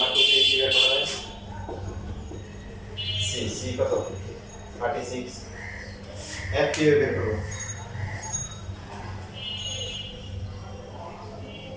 2 তে কি বের করা যায় c কত 36 f কি বের করব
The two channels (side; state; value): both; identical; correlation 1.00